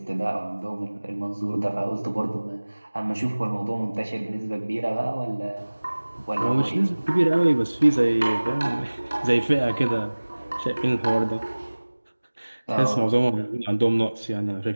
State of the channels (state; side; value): inverted; both; correlation -1.00